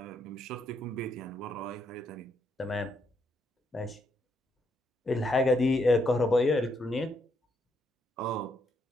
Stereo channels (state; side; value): normal; both; correlation 0.76